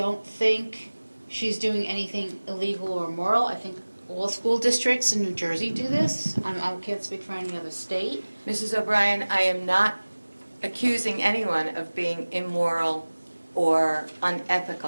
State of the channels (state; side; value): inverted; both; correlation -1.00